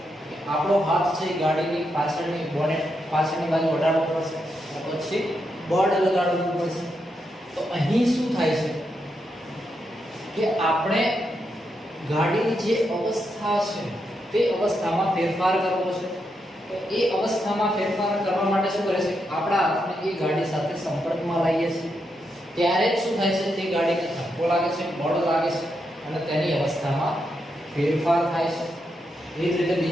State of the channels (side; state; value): both; normal; correlation 0.83